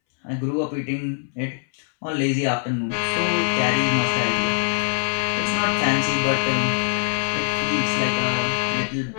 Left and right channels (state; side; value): silent; right; 64 dB below the other